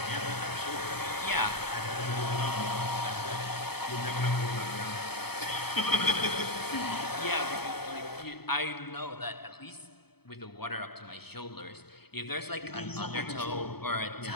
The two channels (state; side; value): late; right; 0.97 ms